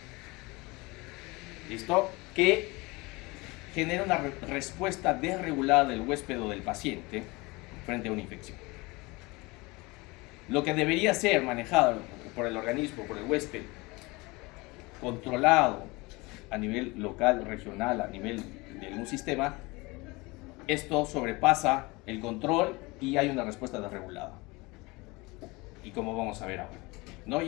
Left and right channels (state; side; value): quieter; right; 24.2 dB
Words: ¿Listo? Que genera una respuesta desregulada del huésped o del paciente frente a una infección. Lo que debería ser manejado por el organismo, por el huésped, controlado a nivel local, regional, a nivel de un sistema, esto sobrepasa el control y hay una respuesta desregulada. Y como vamos a ver ahora, ¿no?